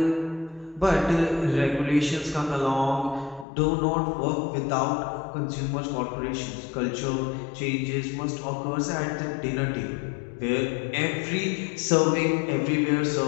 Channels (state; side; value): drops out; right; at 3.5 s